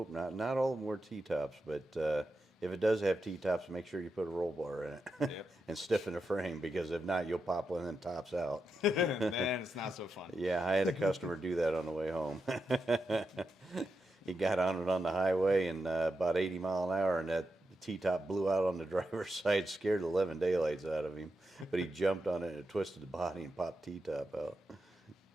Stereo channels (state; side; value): normal; both; correlation 0.87